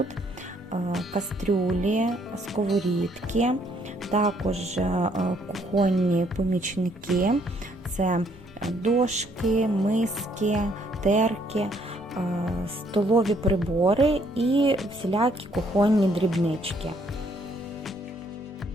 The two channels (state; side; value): normal; both; correlation 0.67